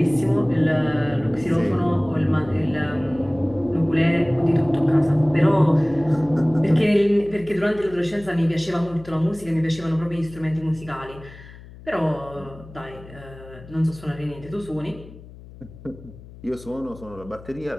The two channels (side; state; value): left; noise; hum, 18 dB below the sound